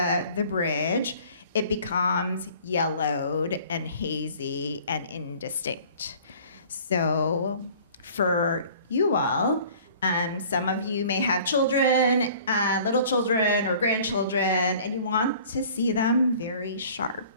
bridge, it becomes yellowed and hazy and indistinct. So for you all, some of you may have children, little children or grandchildren, and you want to see them very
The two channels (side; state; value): both; inverted; correlation -0.50